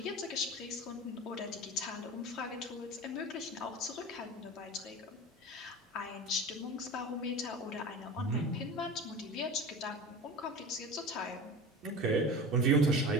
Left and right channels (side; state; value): both; normal; correlation 0.32